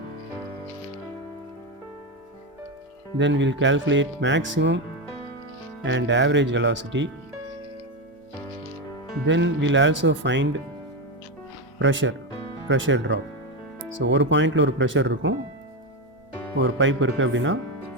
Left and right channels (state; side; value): normal; both; correlation 0.12